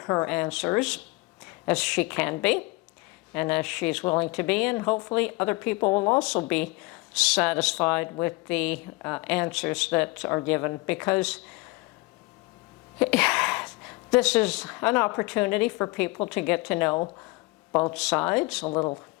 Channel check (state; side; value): quieter; right; 23.8 dB